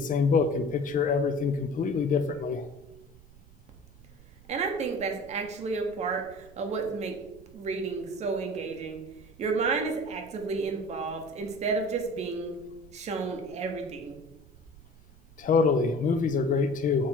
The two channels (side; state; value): right; noise; rumble, 23 dB below the sound